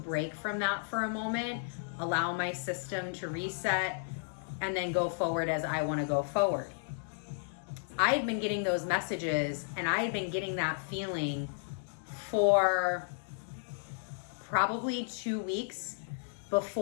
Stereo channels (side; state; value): right; silent; digital silence